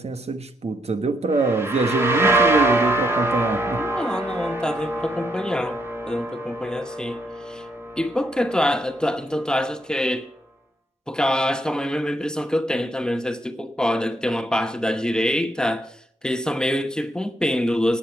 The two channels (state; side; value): normal; both; correlation 0.76